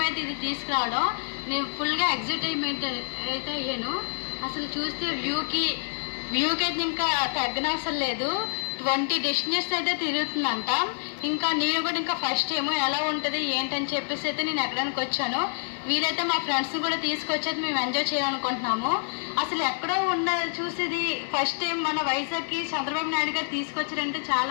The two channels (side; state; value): right; silent; digital silence